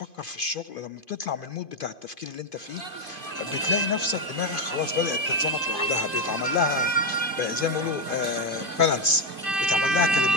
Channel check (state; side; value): late; right; 2.5 ms